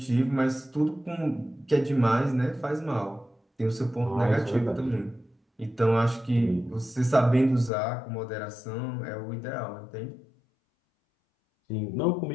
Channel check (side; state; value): right; drops out; at 7.7 s